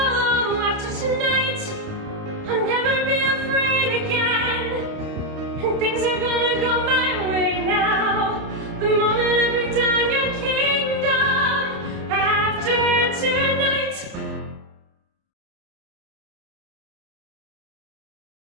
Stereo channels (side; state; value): left; late; 30 ms